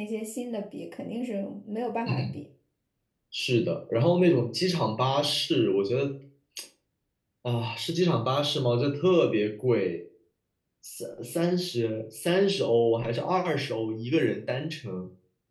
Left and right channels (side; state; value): both; identical; correlation 1.00